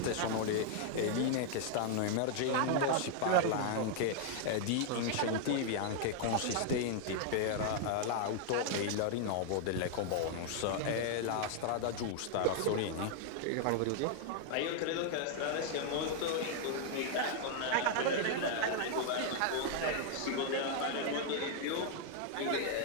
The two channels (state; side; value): different; both; correlation 0.00